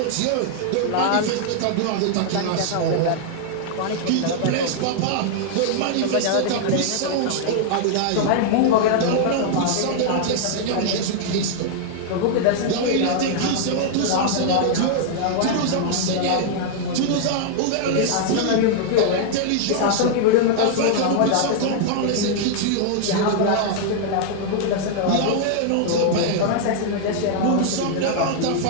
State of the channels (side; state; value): both; different; correlation -0.01